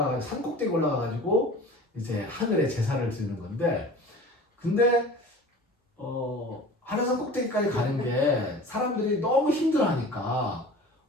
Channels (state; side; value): normal; both; correlation 0.40